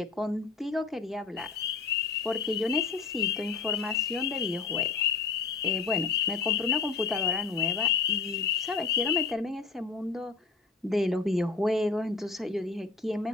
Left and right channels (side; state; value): right; quieter; 4.7 dB